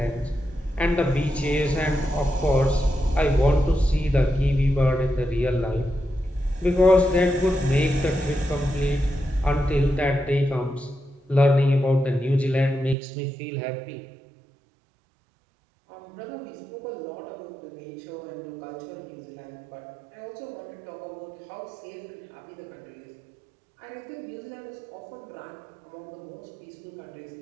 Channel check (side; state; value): left; drops out; at 13.0 s